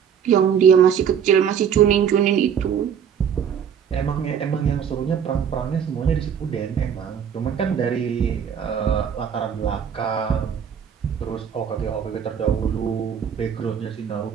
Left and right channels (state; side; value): quieter; left; 8.0 dB